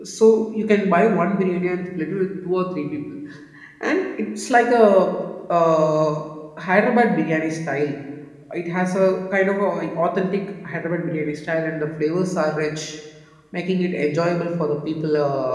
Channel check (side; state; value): both; identical; correlation 1.00